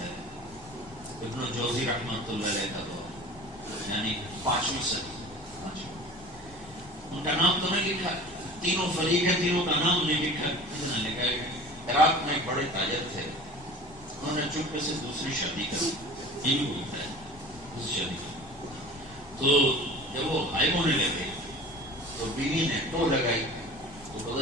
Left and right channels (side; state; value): both; normal; correlation 0.40